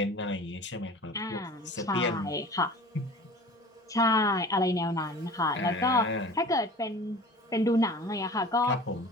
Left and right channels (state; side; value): normal; both; correlation 0.42